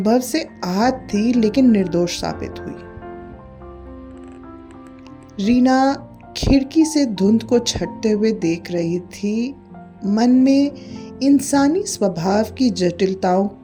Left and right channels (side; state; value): both; identical; correlation 1.00